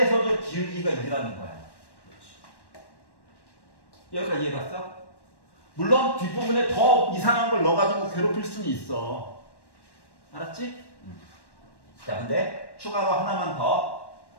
기울기가 2라는 거야. 그렇지. 여기까지 이해갔어? 물론 뒷부분에 더 이상한 걸 넣어가지고 괴롭힐 수는 있어. 알았지? 자, 근데 추가로 하나만 더,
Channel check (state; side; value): late; right; 1.1 ms